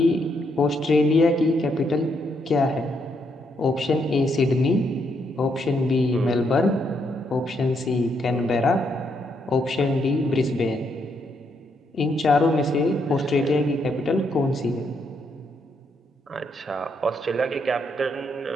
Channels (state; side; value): normal; both; correlation 0.76